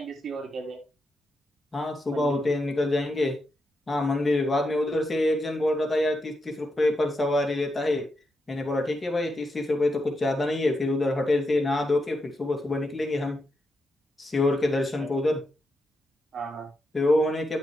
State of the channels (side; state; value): both; normal; correlation 0.84